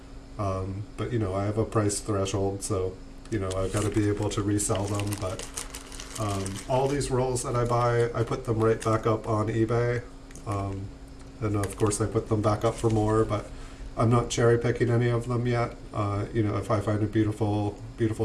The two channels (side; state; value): both; identical; correlation 1.00